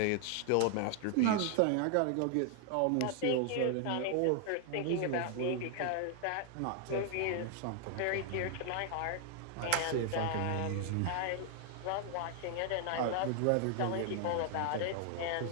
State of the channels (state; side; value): different; both; correlation 0.00